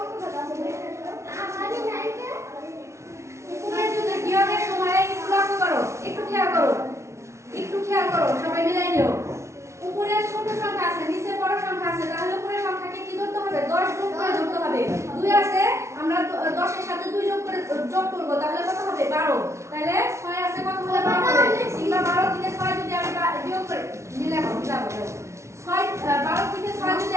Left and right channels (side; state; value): left; late; 0.13 ms